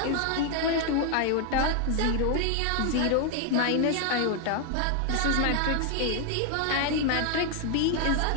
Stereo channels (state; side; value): different; both; correlation 0.00